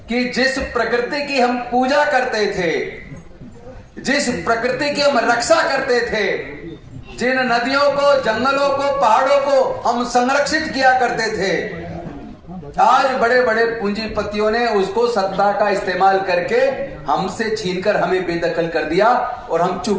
कि जिस प्रकृति की हम पूजा करते थे, जिस प्रकृति की हम रक्षा करते थे, जिन नदियों को, जंगलों को, पहाड़ों को हम संरक्षित किया करते थे, आज बड़े बड़े पूंजीपतियों ने उसको सत्ता का इस्तेमाल करके हमसे छीनकर हमें बेदखल कर दिया और हम चुप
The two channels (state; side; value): identical; both; correlation 1.00